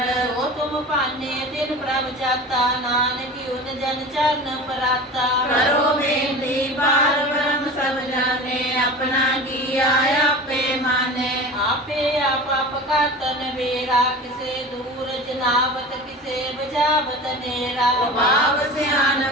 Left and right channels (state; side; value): normal; both; correlation 0.34